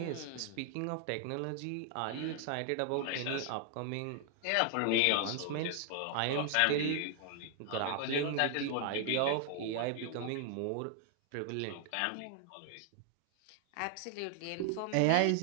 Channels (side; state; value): both; different; correlation 0.00